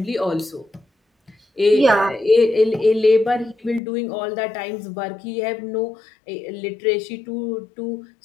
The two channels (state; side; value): drops out; right; at 3.8 s